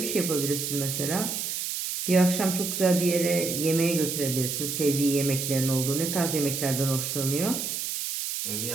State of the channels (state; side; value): noise; right; hiss, 3 dB below the sound